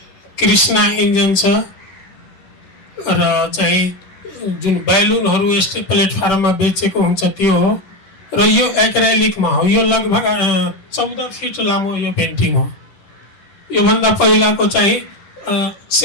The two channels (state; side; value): late; right; 10 ms